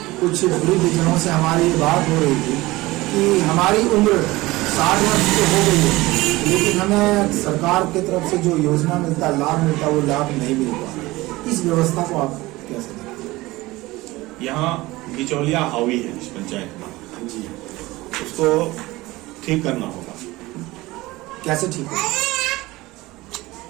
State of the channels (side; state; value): left; quieter; 19.8 dB